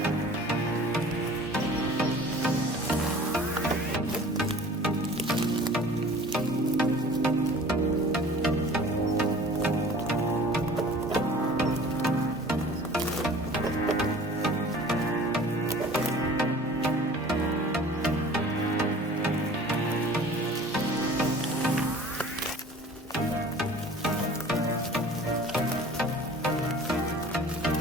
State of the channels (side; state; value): both; normal; correlation 0.45